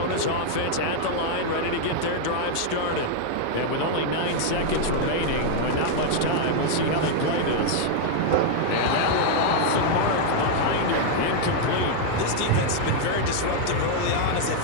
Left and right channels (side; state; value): both; different; correlation 0.00